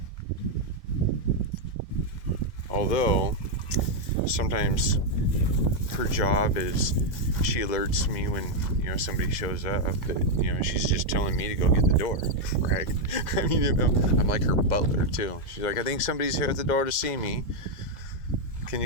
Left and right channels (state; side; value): late; right; 2.0 ms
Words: Although, sometimes her job is she alerts me when somebody shows up, but she's just telling me to go get the door, right? I mean, I'm like her butler too. She's like, I think somebody's here at the door to see me. Can